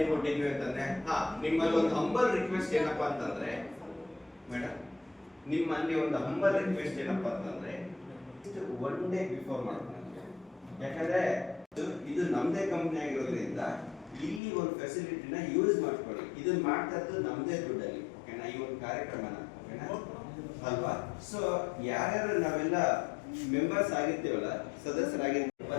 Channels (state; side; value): drops out; right; at 14.4 s